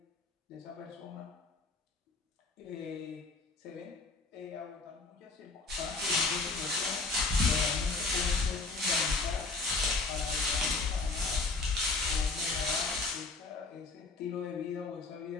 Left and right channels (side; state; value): right; quieter; 3.8 dB